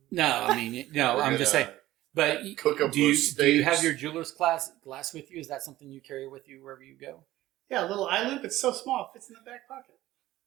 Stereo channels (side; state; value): left; quieter; 15.7 dB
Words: No, I mean no. We're I'm just gonna saying. But cook up do you those have steaks. your jeweler's glass with you? Is that something you carry with you wherever you go? Yeah, a little eye loop. It's so small. It fits in the back pocket.